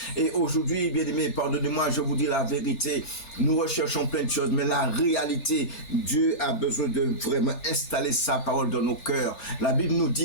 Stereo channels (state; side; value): late; right; 3.4 ms